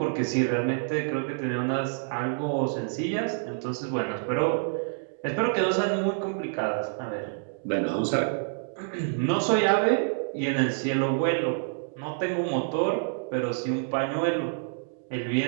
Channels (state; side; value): silent; left; digital silence